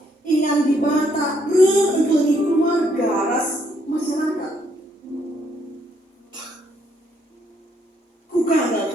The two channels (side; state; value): both; normal; correlation 0.71